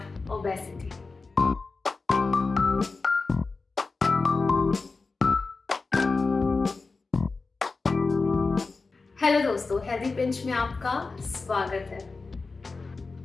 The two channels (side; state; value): right; quieter; 4.0 dB